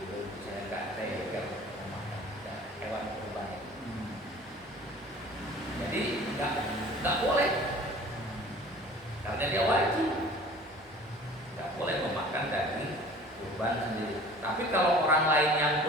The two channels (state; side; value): normal; both; correlation 0.46